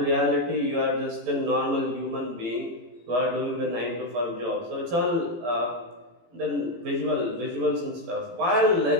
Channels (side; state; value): left; late; 18 ms